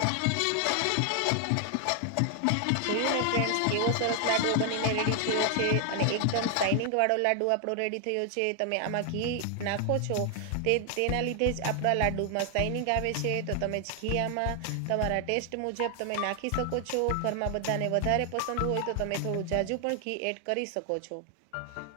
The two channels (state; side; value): different; both; correlation 0.00